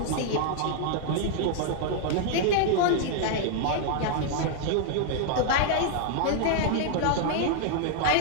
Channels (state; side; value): different; both; correlation 0.00